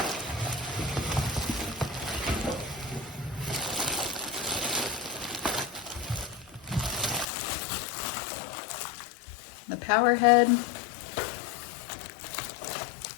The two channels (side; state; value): right; drops out; at 7.2 s